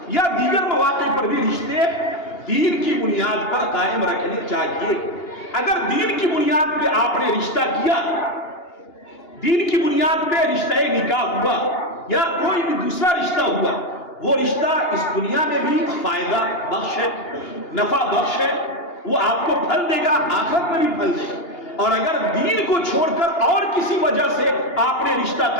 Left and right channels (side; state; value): right; late; 2.8 ms